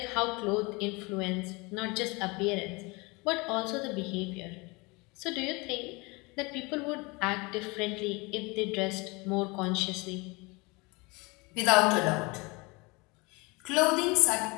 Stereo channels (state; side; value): quieter; right; 26.4 dB